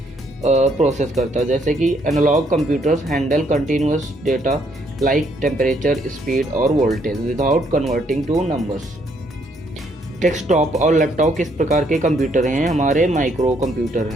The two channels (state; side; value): normal; both; correlation 0.70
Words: प्रोसेस करता है। जैसे कि analog computers handle continuous data like temperature, speed और voltage without converting to numbers. Desktop और लैपटॉप किस प्रकार के कंप्यूटर हैं, हमारे माइक्रो कंप्यूटर